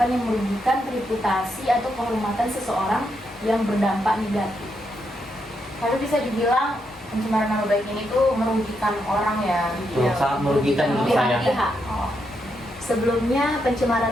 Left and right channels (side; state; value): both; normal; correlation 0.81